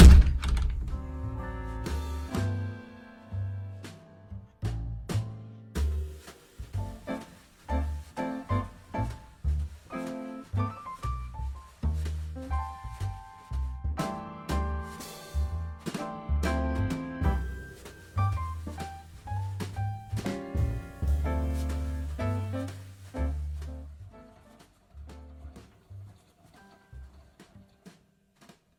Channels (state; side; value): identical; both; correlation 1.00